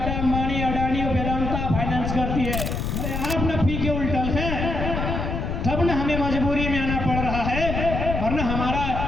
अंबानी, अडानी और वेदांता फाइनेंस करती है। अरे आप ना पी के उल्टल हैं, तब ना हमें मजबूरी में आना पड़ रहा है, वरना हमारा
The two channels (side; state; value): left; noise; rumble, 3 dB below the sound